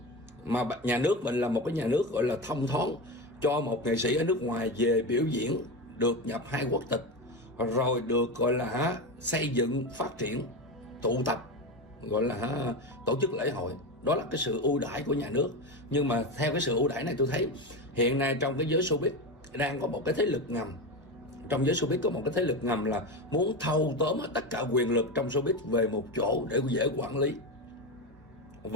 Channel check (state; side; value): normal; both; correlation 0.19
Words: Mà nhà nước mình là một cái nhà nước gọi là thông thoáng, cho một nghệ sĩ ở nước ngoài về biểu diễn được nhập 2 quốc tịch, rồi được gọi là xây dựng, phát triển, tụ tập, gọi là tổ chức lễ hội. Đó là cái sự ưu đãi của nhà nước. Nhưng mà theo cái sự ưu đãi này, tôi thấy hiện nay trong cái giới showbiz đang có một cái thế lực ngầm. Trong giới showbiz có một cái thế lực ngầm là muốn thâu tóm tất cả quyền lực trong showbiz về một chỗ để dễ quản lý.